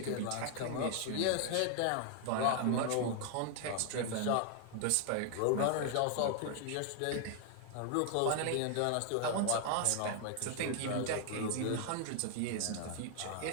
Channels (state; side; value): different; both; correlation 0.00